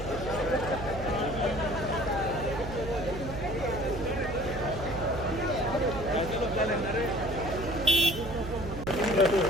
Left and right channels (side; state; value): right; noise; hum, 8 dB below the sound